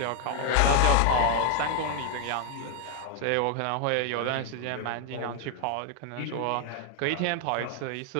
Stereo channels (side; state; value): both; different; correlation 0.00